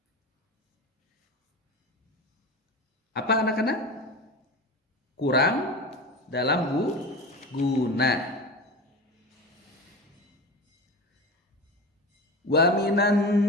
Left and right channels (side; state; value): both; normal; correlation 0.29